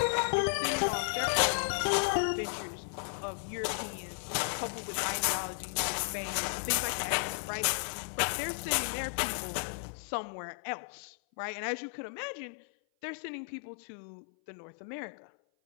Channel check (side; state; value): right; silent; 55 dB below the other